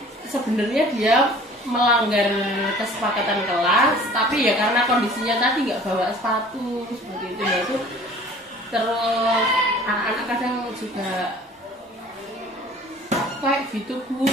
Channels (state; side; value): normal; both; correlation 0.49